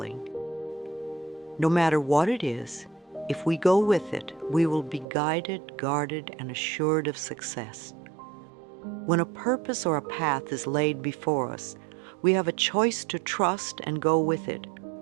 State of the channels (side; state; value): left; drops out; at 5.1 s